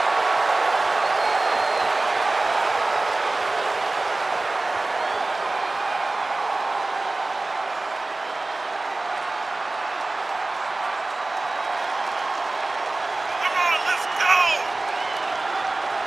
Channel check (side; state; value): left; quieter; 3.1 dB